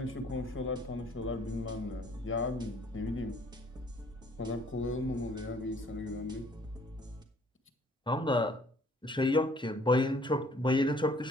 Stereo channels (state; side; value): normal; both; correlation 0.59